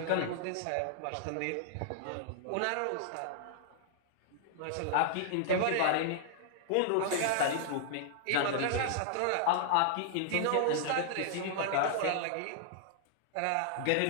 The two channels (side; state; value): both; different; correlation -0.01